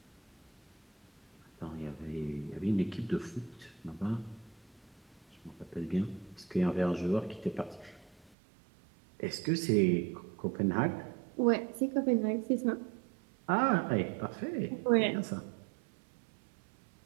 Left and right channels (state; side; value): drops out; left; at 8.3 s